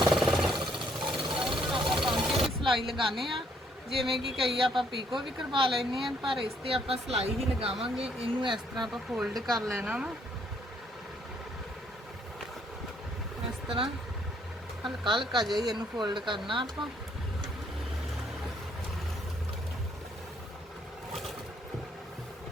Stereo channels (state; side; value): normal; both; correlation 0.68